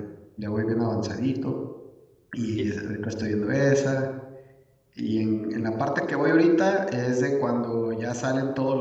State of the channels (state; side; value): identical; both; correlation 1.00